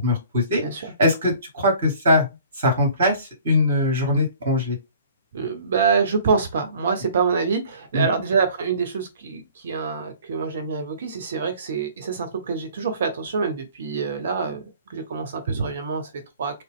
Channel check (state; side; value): inverted; both; correlation -0.51